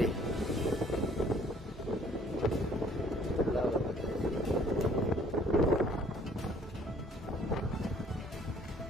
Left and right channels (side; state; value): both; normal; correlation 0.58